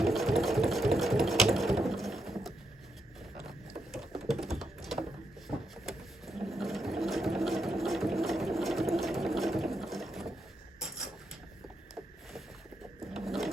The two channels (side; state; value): both; normal; correlation 0.81